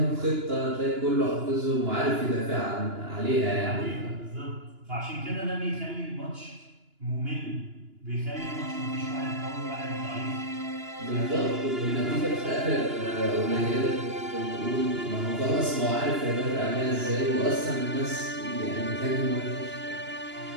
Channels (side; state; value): left; late; 2.9 ms